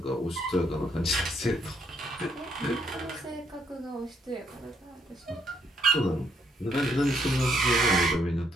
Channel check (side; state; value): both; normal; correlation 0.72